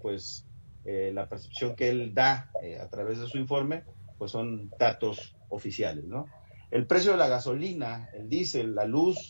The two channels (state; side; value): inverted; both; correlation -1.00